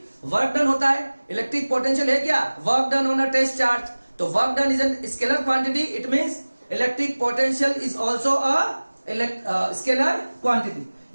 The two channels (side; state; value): both; inverted; correlation -1.00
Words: वर्क डन होता है। इलेक्ट्रिक पोटेंशियल है क्या, work done on a test charge. तो work done is a scalar quantity, it means electric potential is also a scalar quantity.